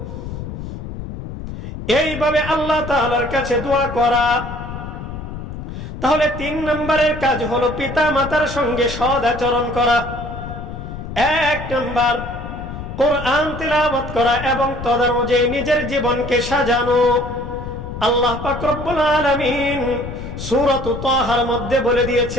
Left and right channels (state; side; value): noise; left; rumble, 9 dB below the sound